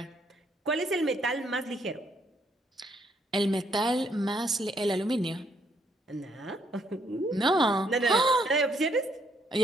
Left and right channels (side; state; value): both; normal; correlation 0.71